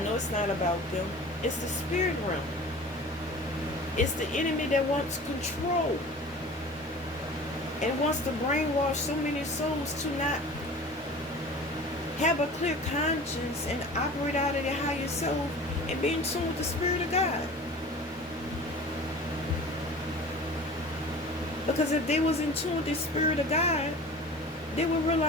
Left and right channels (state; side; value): normal; both; correlation 0.40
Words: know it's not about them. It's the spirit realm. It's the enemy that wants control and wants to brainwash so many souls to not have a clear conscience and operate out of their higher self and be in tune with the Spirit of God. Because if they was in tune with the Spirit of God, they would